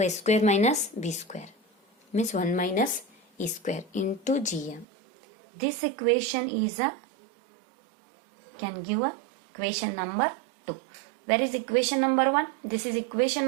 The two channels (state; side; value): drops out; left; at 4.9 s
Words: a square minus b square means 1 minus e square into gm. This equation is can give a equation number 2. Where is equation number 1? This is equation